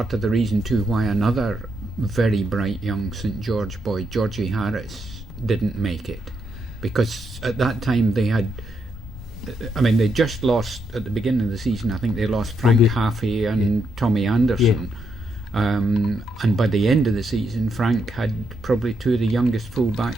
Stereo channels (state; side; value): normal; both; correlation 0.79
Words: of the reason too why another very bright young St George boy, Georgie Harris, didn't make it? Because at that time they just lost at the beginning of the season. I think they lost Frank Haffey and Tommy Anderson. And by the end of the season, Frank had probably 2 of the youngest